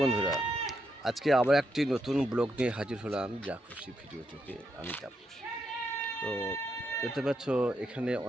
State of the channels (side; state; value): both; normal; correlation 0.81